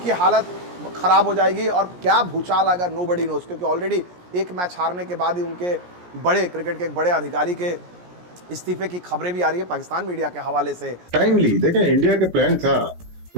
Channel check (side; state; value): left; late; 17 ms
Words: हालत ख़राब हो जाएगी और क्या भूचाल आएगा नोबडी नोस, क्योंकि ऑलरेडी एक मैच हारने के बाद ही उनके बड़े क्रिकेट के एक बड़े अधिकारी के इस्तीफे की खबरें भी आ रही है पाकिस्तान मीडिया के हवाले से। टाइमली देखें, इंडिया का प्लान था,